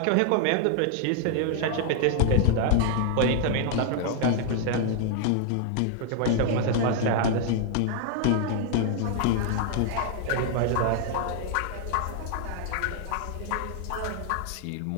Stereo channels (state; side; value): different; both; correlation 0.00